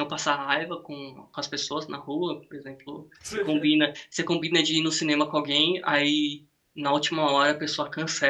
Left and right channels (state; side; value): identical; both; correlation 1.00